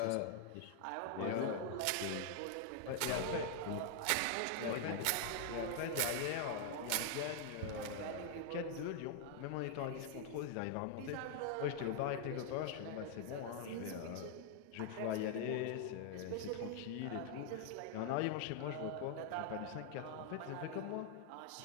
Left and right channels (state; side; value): different; both; correlation 0.00